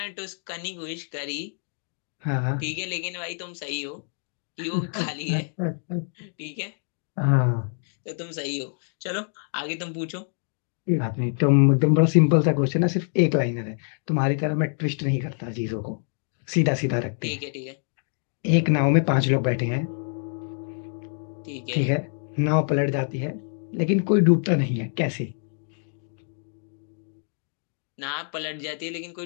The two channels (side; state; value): right; silent; 61 dB below the other